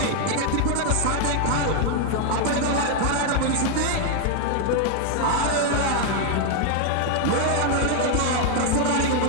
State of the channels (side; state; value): both; different; correlation 0.00